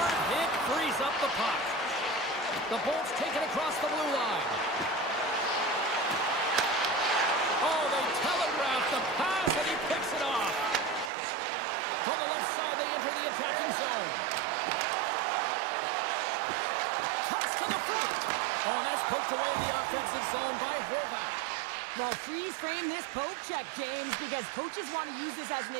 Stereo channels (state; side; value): drops out; left; at 11.1 s